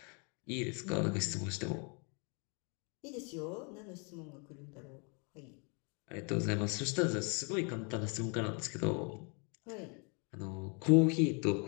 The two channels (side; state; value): right; quieter; 35.7 dB